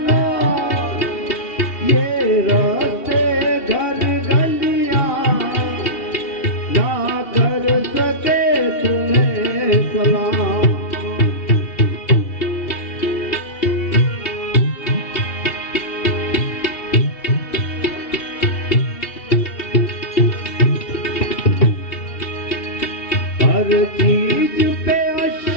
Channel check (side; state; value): right; late; 2.7 ms